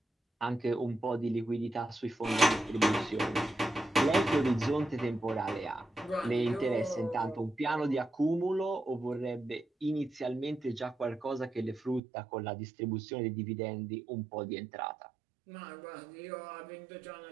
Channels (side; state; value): left; drops out; at 12.0 s